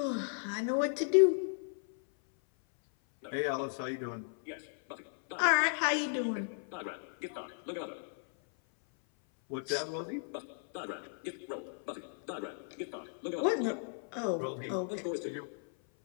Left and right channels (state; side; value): silent; right; 54 dB below the other